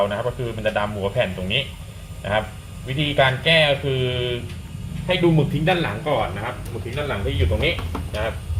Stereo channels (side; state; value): both; identical; correlation 1.00